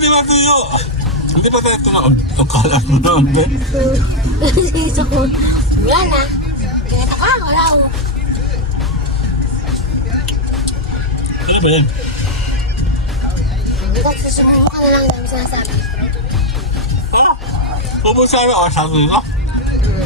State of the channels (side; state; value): both; normal; correlation 0.01